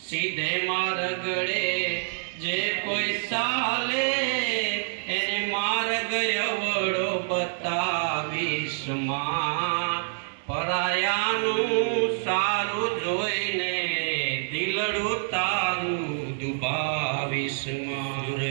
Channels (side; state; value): left; silent; digital silence